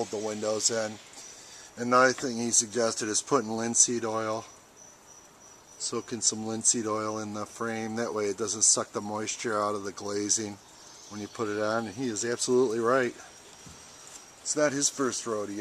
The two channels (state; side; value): identical; both; correlation 1.00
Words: the windows in. Another thing he suggested is putting linseed oil. Soaking some linseed oil in the frame. That way it doesn't suck the moisture out of the glazing when you put it on. And he is absolutely right. It's not his first